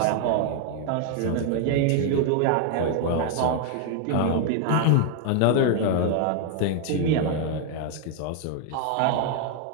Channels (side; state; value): both; different; correlation 0.00